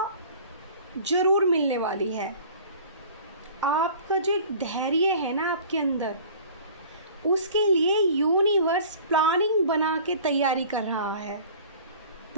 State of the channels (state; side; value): inverted; both; correlation -0.46